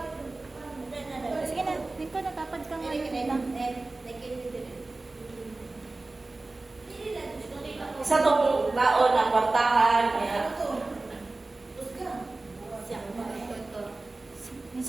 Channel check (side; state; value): left; quieter; 3.2 dB